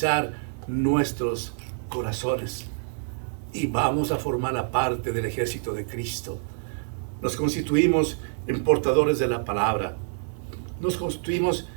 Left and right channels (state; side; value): silent; left; digital silence